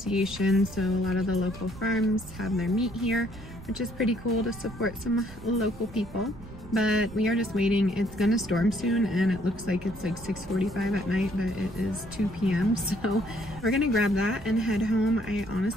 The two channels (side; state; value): right; noise; rumble, 17 dB below the sound